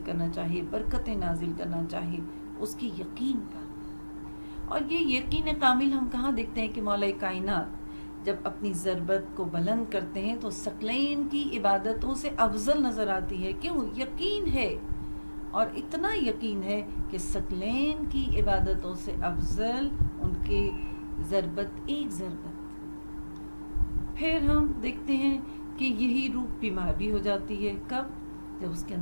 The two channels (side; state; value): both; inverted; correlation -1.00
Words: کرنا چاہے، برکتیں نازل کرنا چاہے، اس کی یقین پر. اور یہ یقین کامل ہم کہاں دیکھتے ہیں کہ مولا کائنات جب اپنی ضربت کو بلند کرتے ہیں تو ثقلین کی عبادتوں سے افضل نظر آتی ہے. کیوں؟ یقین ہے، اور اتنا یقین ہے کہ ثقلین کی عبادتوں سے افضل ان کے ضربت ایک ضربت. پھر ہم دیکھتے ہیں کہ یہی روح بیمار بھی ہو جاتی ہے. کب؟ جب اس کے